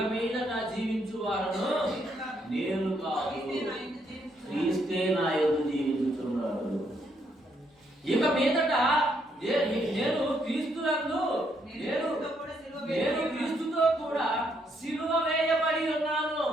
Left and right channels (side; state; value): both; normal; correlation 0.74